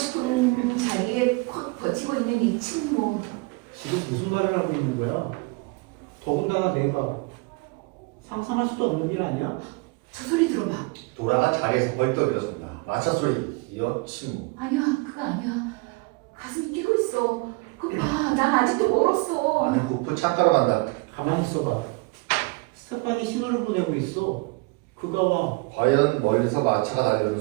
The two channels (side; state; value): left; quieter; 27.1 dB